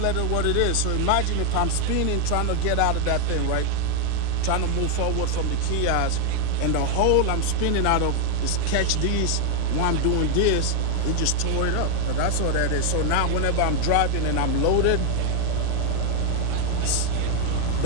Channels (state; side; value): different; both; correlation 0.00